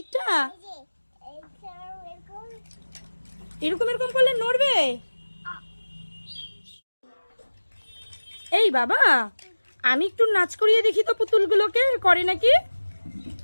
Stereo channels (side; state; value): both; inverted; correlation -1.00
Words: এই যে এরকম এরকম এরকম করলে নড়বে? এই বাবা, আমি একটু নাচ করিয়ে দেখি তো পুতুলগুলোকে, করে নাকি।